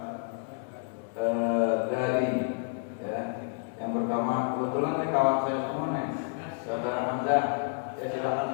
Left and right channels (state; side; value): silent; right; 58 dB below the other